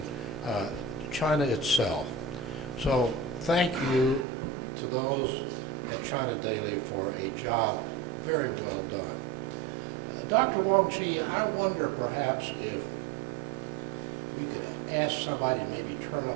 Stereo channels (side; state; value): left; drops out; at 4.2 s